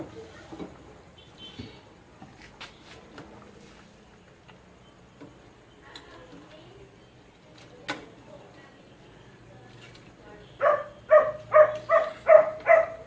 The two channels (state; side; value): identical; both; correlation 1.00